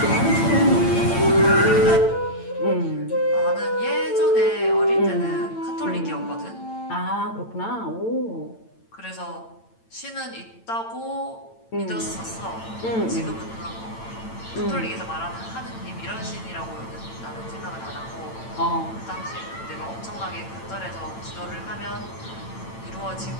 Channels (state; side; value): late; right; 8.9 ms